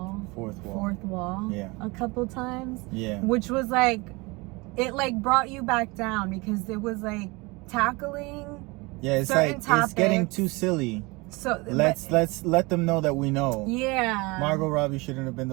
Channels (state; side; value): quieter; left; 25.3 dB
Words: wall. Yeah. A couple times. Yeah. Which was like, it like brought you back down because it was like tackling. Yeah, it's certain like topics. It's getting too silly. So let's let them know that we know. Yeah. Margot Robbie shouldn't have been